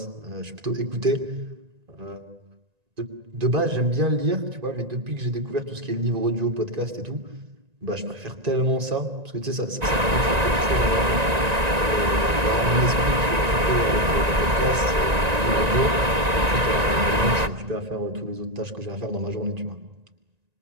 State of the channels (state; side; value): late; left; 1.9 ms